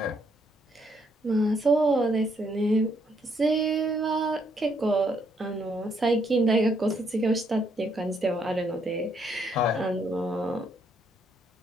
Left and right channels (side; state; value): both; normal; correlation 0.72